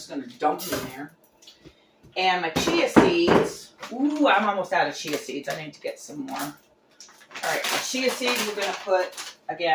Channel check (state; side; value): identical; both; correlation 1.00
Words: going to dump it in there. And my chia seeds. Ooh, I'm almost out of chia seeds. I need to get some more. All right, the chia seeds we're going to put,